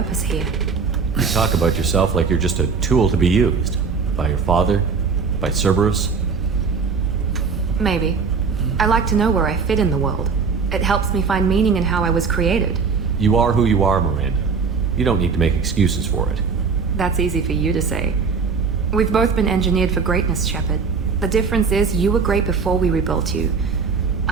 here. You talk about yourself like you're just a tool to be used. By your father? By Cerberus? Maybe. I like to know where I fit in the world. It helps me find meaning in how I was created. You are who you are, Miranda. You don't need to make excuses for it. That's easy for you to say. We've both been engineered for greatness, Shepard. The difference is you were great before we rebuilt you.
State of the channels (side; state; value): left; quieter; 5.3 dB